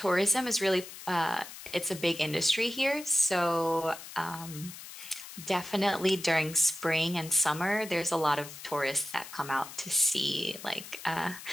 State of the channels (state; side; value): noise; left; hiss, 13 dB below the sound